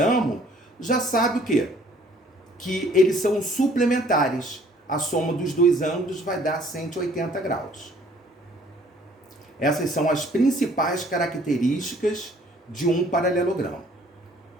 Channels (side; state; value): both; normal; correlation 0.58